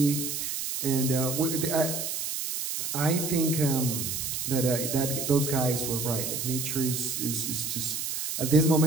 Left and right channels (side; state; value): right; noise; hiss, 3 dB below the sound